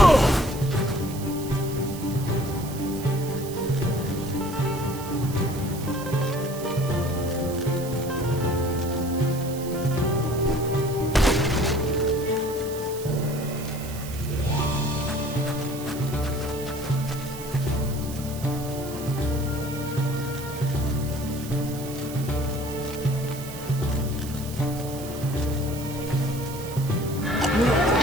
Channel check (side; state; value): right; noise; hiss, 13 dB below the sound